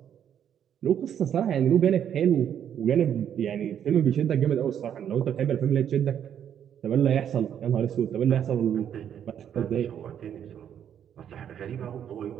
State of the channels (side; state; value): left; quieter; 9.3 dB